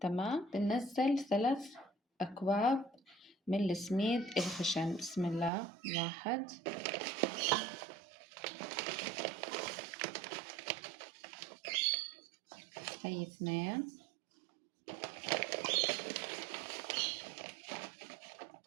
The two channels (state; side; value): drops out; left; at 5.5 s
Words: تمام. بننزل 3 أكواب من السميد الخشن. بسم الله. 1، هي 2،